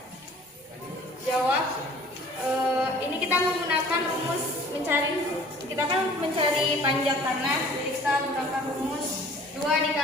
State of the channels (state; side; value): normal; both; correlation 0.50